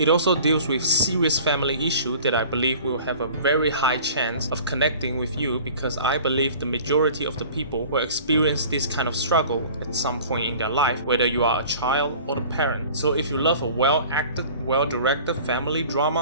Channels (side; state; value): both; inverted; correlation -0.45